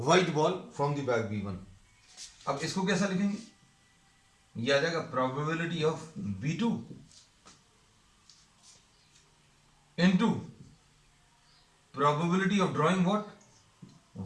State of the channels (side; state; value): both; identical; correlation 1.00